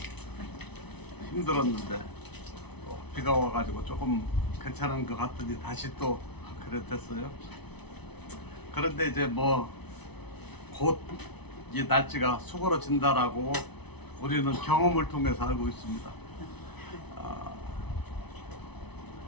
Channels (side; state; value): right; late; 0.99 ms